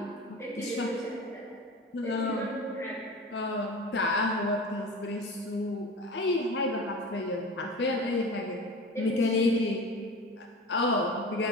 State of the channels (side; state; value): both; normal; correlation 0.33